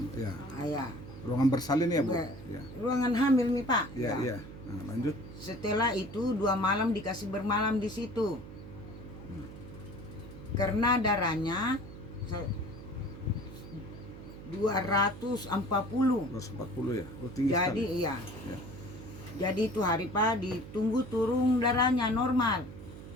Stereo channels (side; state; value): right; noise; hum, 14 dB below the sound